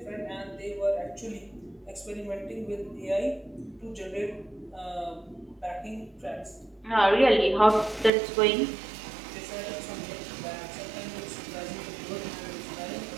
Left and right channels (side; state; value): left; drops out; at 8.1 s